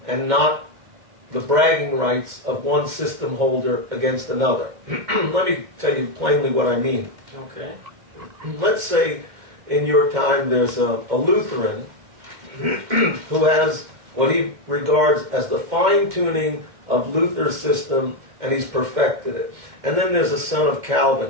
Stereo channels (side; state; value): left; late; 2.2 ms